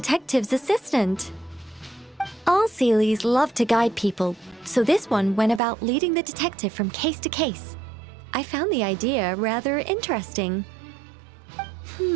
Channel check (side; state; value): left; drops out; at 5.6 s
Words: assistant. All Seelies love to guide people, so this one went about leading the detective from case to case. I found the idea rather interesting.